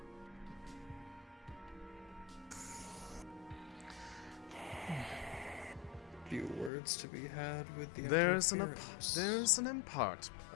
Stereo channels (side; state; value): right; drops out; at 6.7 s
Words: few words to be had with the There's an interference.